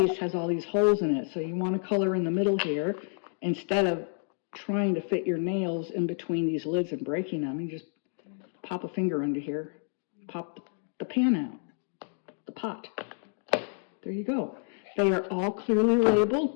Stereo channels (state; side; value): silent; right; 58 dB below the other